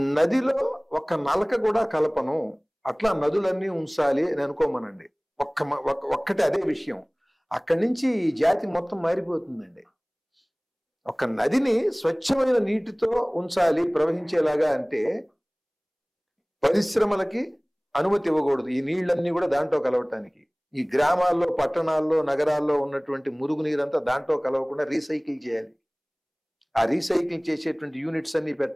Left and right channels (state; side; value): identical; both; correlation 1.00